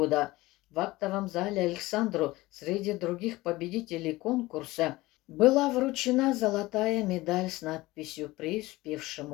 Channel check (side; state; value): right; quieter; 19.5 dB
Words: в актовом зале Александру среди других победителей конкурса была вручена золотая медаль с надписью